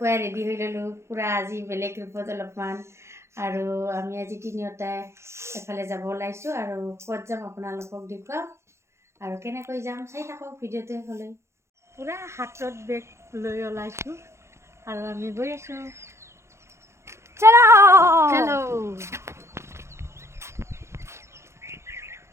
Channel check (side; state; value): left; late; 0.13 ms